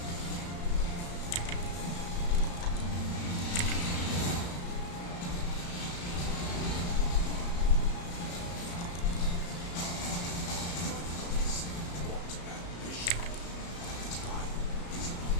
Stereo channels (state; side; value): late; right; 34 ms